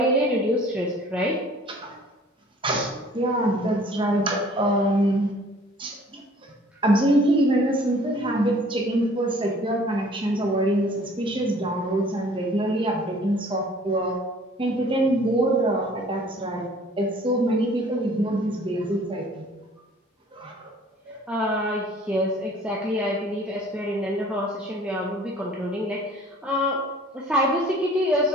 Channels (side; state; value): both; normal; correlation 0.52